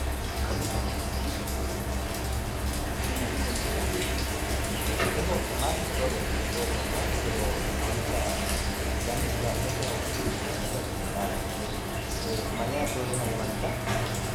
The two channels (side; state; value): both; identical; correlation 1.00